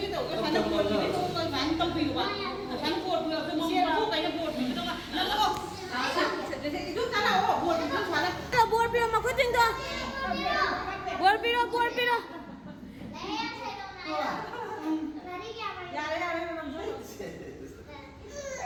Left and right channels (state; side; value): identical; both; correlation 1.00